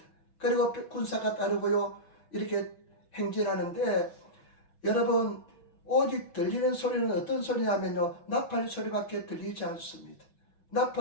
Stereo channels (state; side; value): late; right; 6.1 ms